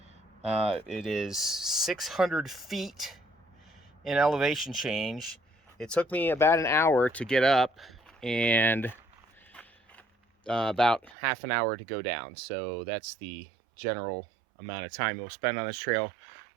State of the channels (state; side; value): drops out; left; at 11.2 s